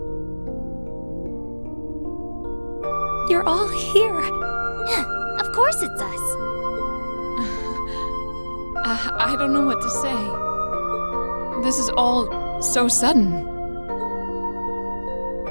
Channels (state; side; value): inverted; both; correlation -1.00